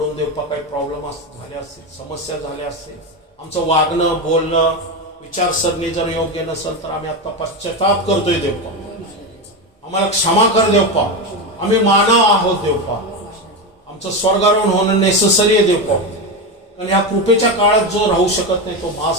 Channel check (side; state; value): both; normal; correlation 0.15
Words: देवपा काही प्रॉब्लेम झाले असतील, समस्या झाल्या असतील, आमचं वागणं बोलणं विचारसरणी जर योग्य नसेल तर आम्ही आता पश्चाताप करतोय देवपा, आम्हाला क्षमा कर देवपा. आम्ही मानव आहोत देवपा, आमचं स्वर्गारोहण होणं नेसेसरी आहे देवपा. कारण ह्या कृपेच्या काळात जो राहू शकत नाही तो